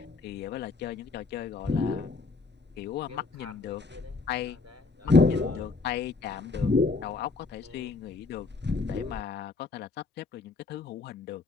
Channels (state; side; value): quieter; right; 4.0 dB